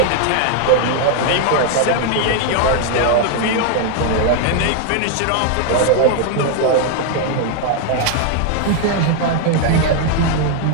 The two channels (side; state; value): both; different; correlation 0.00